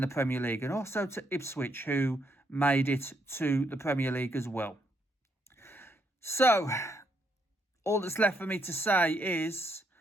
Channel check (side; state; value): both; normal; correlation 0.75